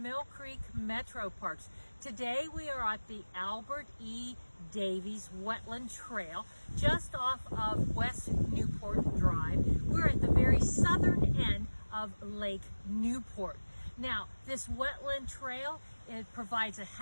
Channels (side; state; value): both; inverted; correlation -1.00